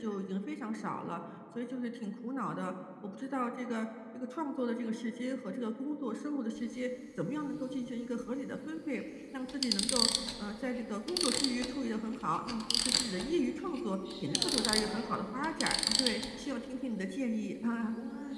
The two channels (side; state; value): both; identical; correlation 1.00